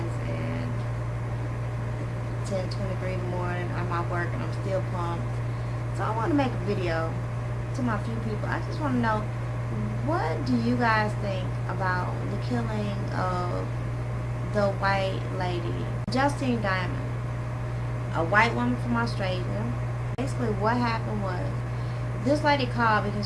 and 10:23 in the morning. I'm out work and I'm still pumped. So I want to make a video to my few people. I just want to know, what do you guys think about the killing of the white lady, Justine Diamond, a white woman from Australia? Basically, what happened was, this lady called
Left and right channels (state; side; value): identical; both; correlation 1.00